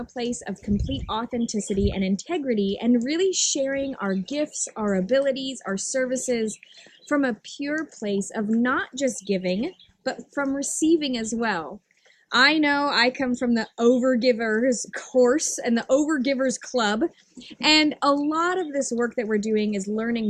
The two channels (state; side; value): identical; both; correlation 1.00